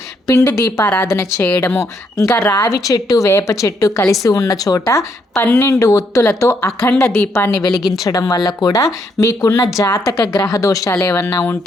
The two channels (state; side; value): normal; both; correlation 0.74